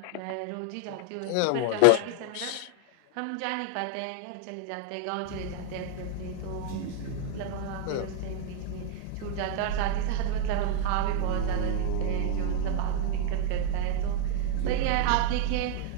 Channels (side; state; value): both; different; correlation 0.00